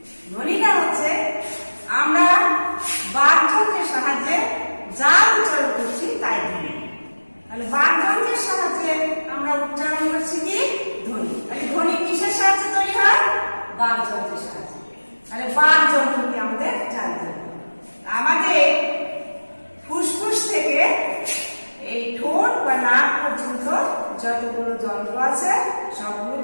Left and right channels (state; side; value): inverted; both; correlation -1.00